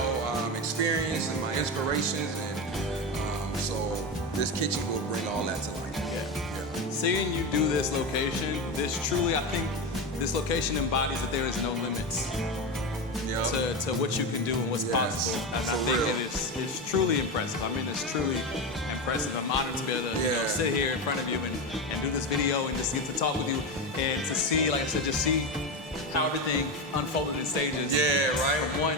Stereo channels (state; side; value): normal; both; correlation 0.17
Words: experience and my inspirations, and so this kitchen will bring all that to life. Yeah. Seeing you do this location, I think this location embodies that there is no limits to what you can do and what's possible. And I think it's truly impressive. I mean, it's truly impressive. I'm honored to be able to sit here in front of you and do this video and just get to talk with you and to see, like I said, just see how everything unfolded in stages. Yeah, right. From 1,